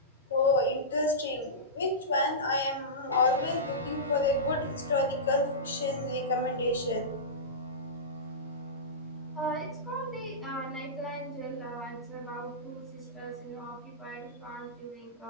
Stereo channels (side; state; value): both; normal; correlation -0.17